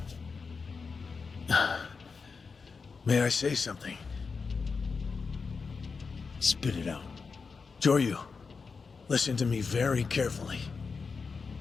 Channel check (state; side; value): quieter; right; 4.9 dB